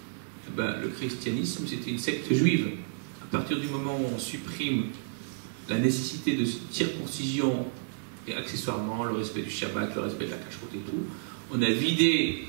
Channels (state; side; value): silent; left; digital silence